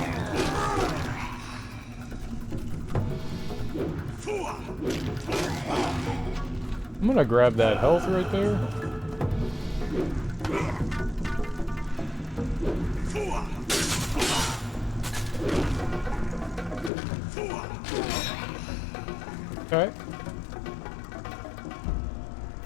I'm gonna grab that health right there. Okay.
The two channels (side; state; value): right; drops out; at 16.9 s